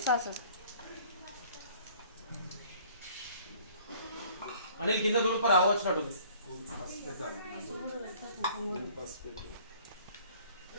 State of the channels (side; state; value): both; inverted; correlation -0.54